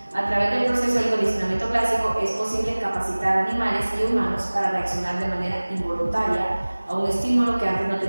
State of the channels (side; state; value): both; inverted; correlation -1.00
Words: A través del proceso del condicionamiento clásico es posible capacitar a animales y humanos para reaccionar de manera involuntaria a un estímulo que antes no